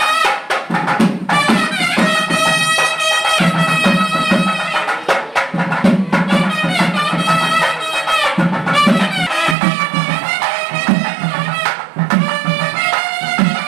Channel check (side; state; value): left; drops out; at 9.6 s